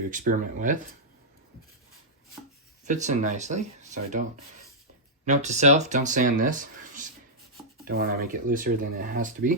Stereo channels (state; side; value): normal; both; correlation -0.09